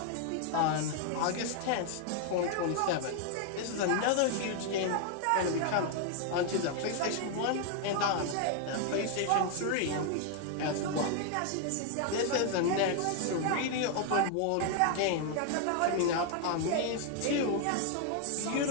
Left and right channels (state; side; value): different; both; correlation 0.00